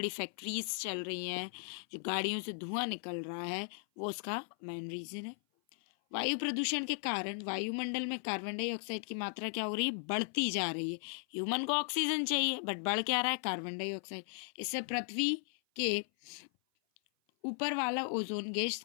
फैक्ट्रीज चल रही हैं, जो गाड़ियों से धुआं निकल रहा है, वो उसका मेन रीजन है। वायु प्रदूषण के कारण वायुमंडल में कार्बन डाइऑक्साइड की मात्रा क्या हो रही है, बढ़ती जा रही है। ह्यूमन को ऑक्सीजन चाहिए, बट बढ़ क्या रहा है, कार्बन डाइऑक्साइड। इससे पृथ्वी के ऊपर वाला ओजोन गैस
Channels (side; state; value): right; silent; 53 dB below the other